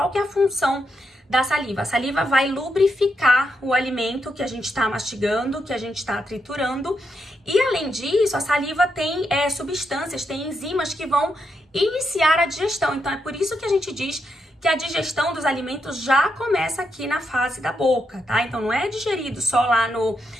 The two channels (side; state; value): both; normal; correlation 0.82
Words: que é a função da saliva? A saliva vai lubrificar o alimento que a gente está mastigando, que a gente está triturando. E, além disso, a saliva tem substâncias, tem enzimas que vão iniciar a digestão. Então, é por isso que a gente diz que a digestão dos alimentos já começa aqui na fase da boca, tá? Então não é digerido só lá